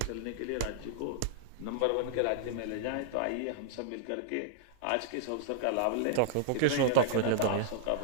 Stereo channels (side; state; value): both; different; correlation -0.02